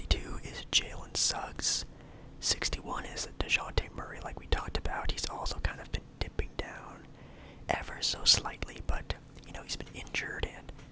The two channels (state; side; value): identical; both; correlation 1.00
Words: is Jalen Suggs. 61 is DeJounte Murray, like we talked about. He's also kind of been dipping down ever so slightly, but, you know, he's been injured, and